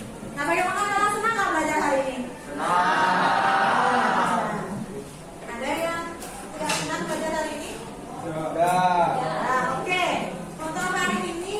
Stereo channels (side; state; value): both; identical; correlation 1.00